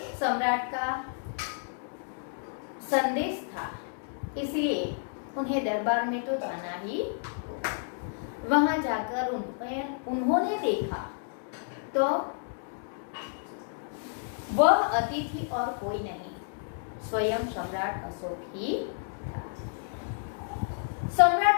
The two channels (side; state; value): right; silent; digital silence